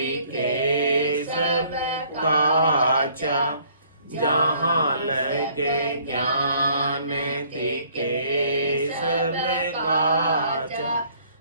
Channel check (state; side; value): inverted; both; correlation -0.60